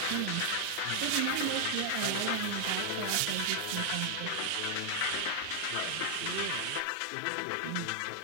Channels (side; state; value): both; different; correlation 0.00